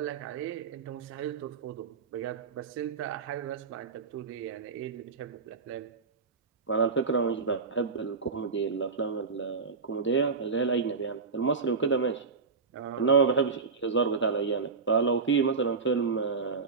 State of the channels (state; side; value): quieter; left; 4.9 dB